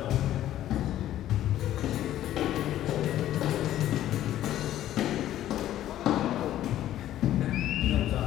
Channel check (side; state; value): right; quieter; 12.7 dB